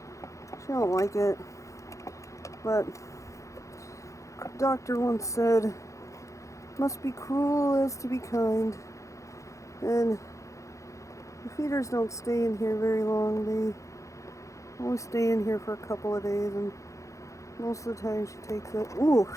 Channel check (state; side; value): late; right; 0.15 ms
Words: She don't like it. But doctor once said, must be cruel as to be kind. And the feeders don't stay in here very long. They only stay in here for a couple of days and Most of the time she takes it. Ooh,